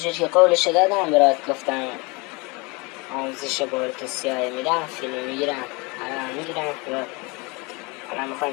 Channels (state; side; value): quieter; right; 27.6 dB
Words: که قولش دادم برات گفتم آموزش بارت سیاه میدم، فیلم میگیرم، الان میگیرم الان